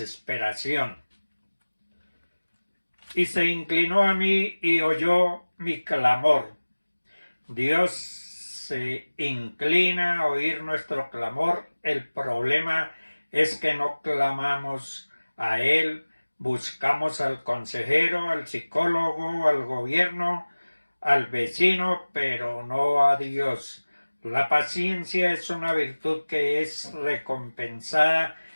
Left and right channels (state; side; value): inverted; both; correlation -1.00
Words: Y se inclinó a mí y oyó mi clamor. Dios se inclina a oír nuestro clamor. El problema es que no clamamos a Él, buscamos al consejero, al psicólogo, al gobierno, al vecino, pero no a Dios. La paciencia es una virtud que es recompensada